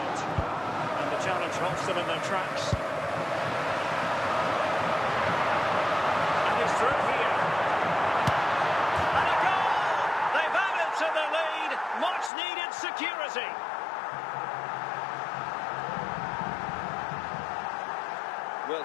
And the challenge halts them in their tracks. And he's through here. And a goal! They've added to the lead. Much needed security. Well,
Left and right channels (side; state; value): right; drops out; at 12.3 s